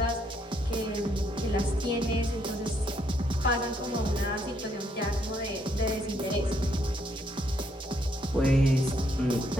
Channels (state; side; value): normal; both; correlation 0.72